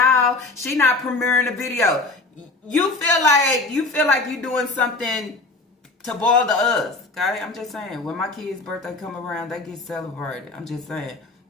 She not premiering a video. You feel like you doing something to bother us. Okay, I'm just saying. When my kid's birthday come around, they get celebrated. I'm just saying.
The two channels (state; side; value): quieter; right; 3.3 dB